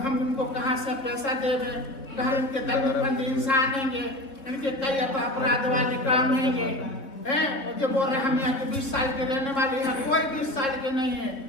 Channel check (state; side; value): late; right; 3.8 ms